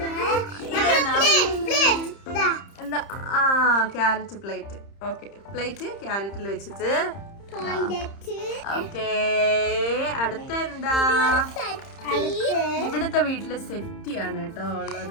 എന്താ? ആ ക്യാരറ്റ് പ്ലേറ്റ്. ഓക്കെ, പ്ലേറ്റ് ക്യാരറ്റിൽ വെച്ചിട്ട്. ഓക്കെ, അടുത്ത എന്താ? ഇവിടുത്തെ വീട്ടില് സെറ്റിയാണ് കേട്ടോ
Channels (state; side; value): late; right; 30 ms